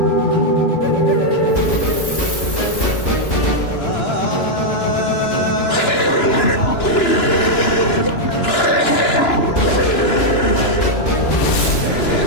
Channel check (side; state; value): right; late; 2.9 ms